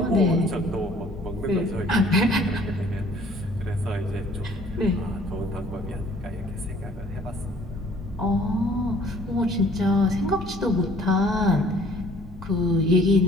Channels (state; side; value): normal; both; correlation 0.56